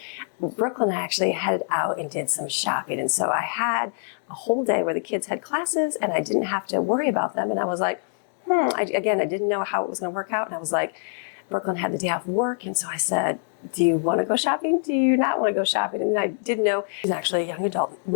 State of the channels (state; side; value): silent; right; 62 dB below the other